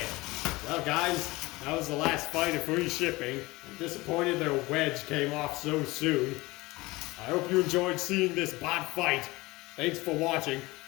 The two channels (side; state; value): right; quieter; 21.5 dB